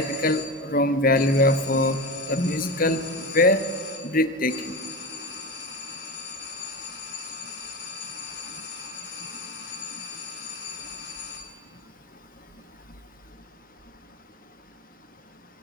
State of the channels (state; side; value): normal; both; correlation 0.23